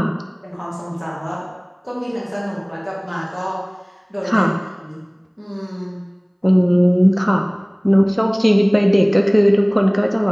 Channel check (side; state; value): both; identical; correlation 1.00